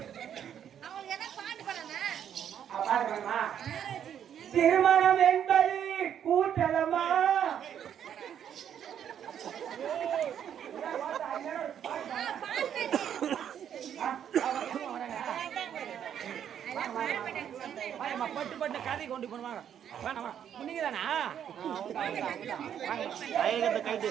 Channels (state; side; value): quieter; left; 9.2 dB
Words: திருமணம் என்பது கூட்டலமா பட்டு கதை கொண்டு போடுவாங்க வேணாமா நீங்க தானா